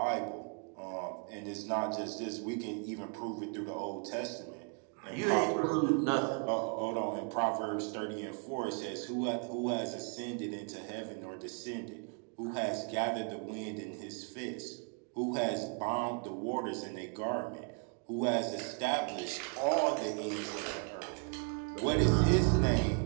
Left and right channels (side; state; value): left; quieter; 39.0 dB